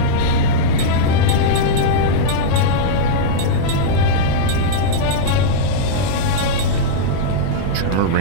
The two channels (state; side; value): different; both; correlation -0.03